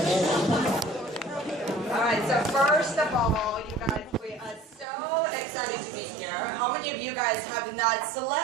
on. Alright, so first of all, you guys, we are so excited to be here. How many of you guys have not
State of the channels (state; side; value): drops out; left; at 4.9 s